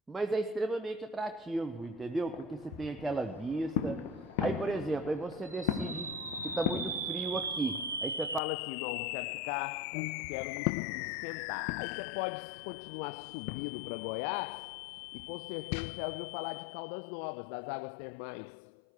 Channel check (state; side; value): drops out; right; at 8.4 s